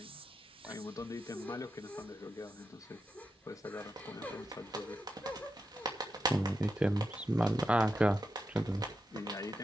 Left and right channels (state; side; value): normal; both; correlation 0.87